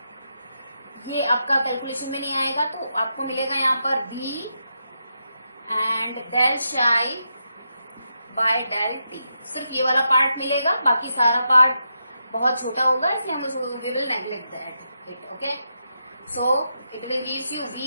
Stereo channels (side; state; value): both; inverted; correlation -0.84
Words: ये आपका कैलकुलेशन में नहीं आएगा तो आपको मिलेगा यहाँ पर v एंड डेल शाई बाय डेल टी। सिर्फ ये वाला पार्ट मिलेगा, बाकी सारा पार्ट बहुत छोटा होगा इसलिए हम we will neglect that it. Okay, so it will gives you